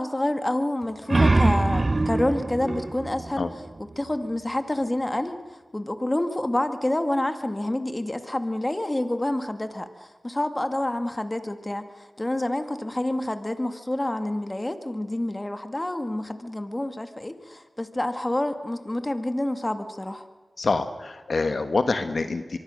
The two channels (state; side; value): normal; both; correlation 0.98